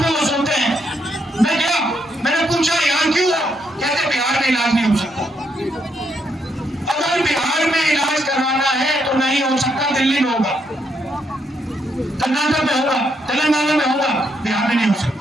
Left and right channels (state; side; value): normal; both; correlation 0.77